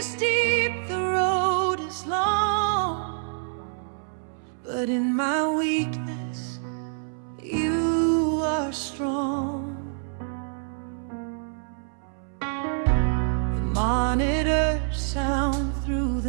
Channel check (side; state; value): left; silent; 61 dB below the other